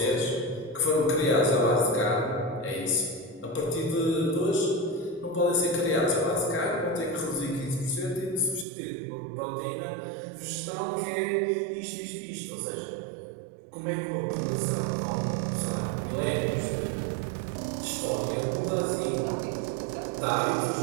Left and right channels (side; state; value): left; drops out; at 8.7 s